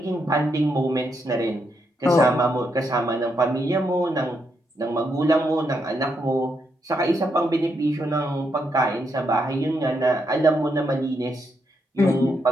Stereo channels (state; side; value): normal; both; correlation 0.79